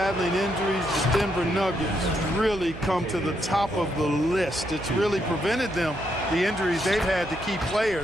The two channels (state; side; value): noise; right; hum, 14 dB below the sound